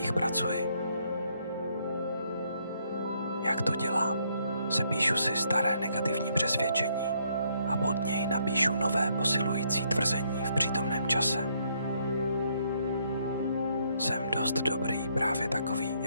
pracuji. Jak to dělám? Sepíšu si staré negativní přesvědčení a pod něj napíšu nové posilující tvrzení v přítomném čase. Jsem dost dobrý právě takový,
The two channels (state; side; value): inverted; both; correlation -0.71